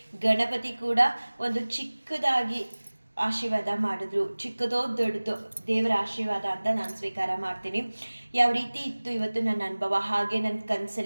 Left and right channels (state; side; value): inverted; both; correlation -1.00